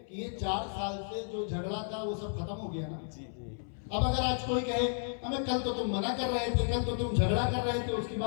کہ یہ 4 سال سے جو جھگڑا تھا وہ سب ختم ہو گیا نا. اب اگر آج کوئی کہے ہمیں کل تو تم منع کر رہے تھے, کل تو تم جھگڑا کر رہے تھے, اس کی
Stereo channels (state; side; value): silent; right; 56 dB below the other